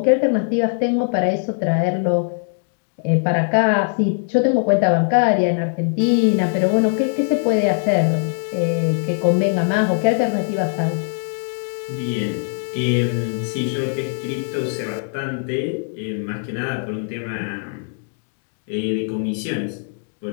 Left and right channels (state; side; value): silent; right; 61 dB below the other